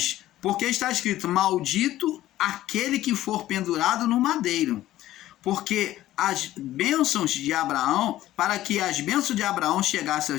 porque está escrito: maldito aquele que for pendurado no madeiro. Porque as bênçãos de Abraão, para que as bênçãos de Abraão chegassem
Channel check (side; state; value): right; quieter; 14.5 dB